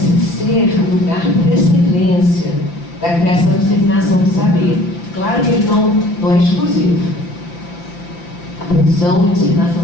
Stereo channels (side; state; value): right; late; 5.8 ms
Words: ser o lugar por excelência da criação e disseminação do saber. Claro que ele não é exclusivo. A produção e disseminação